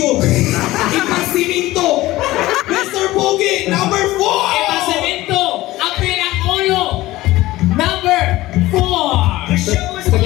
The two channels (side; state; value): right; quieter; 17.5 dB